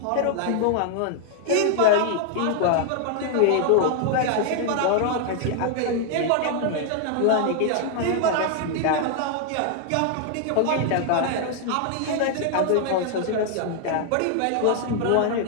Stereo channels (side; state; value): both; different; correlation 0.00